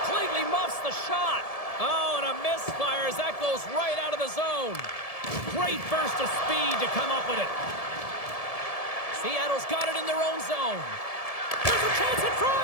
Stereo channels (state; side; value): late; right; 1.7 ms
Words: muffs the shot. Oh, and a misfire as that goes right out of the zone. Great burst of speed to come up with it. Seattle's got it in their own zone. There's a chance in